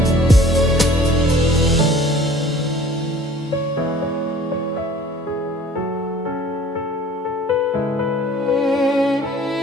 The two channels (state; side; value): normal; both; correlation 0.51